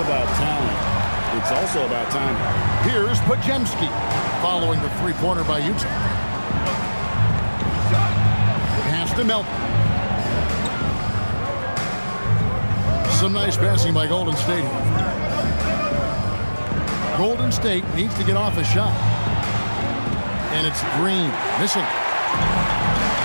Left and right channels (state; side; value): inverted; both; correlation -1.00